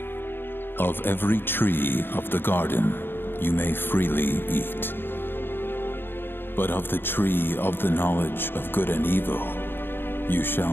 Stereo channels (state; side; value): late; right; 0.10 ms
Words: "Of every tree of the garden you may freely eat. But of the tree of the knowledge of good and evil, you shall